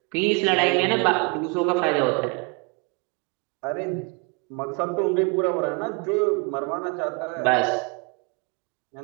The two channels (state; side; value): quieter; left; 31.6 dB